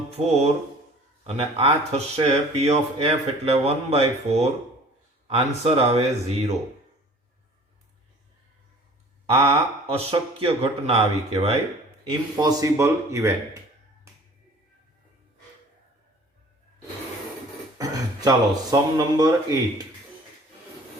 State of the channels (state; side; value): normal; both; correlation 0.49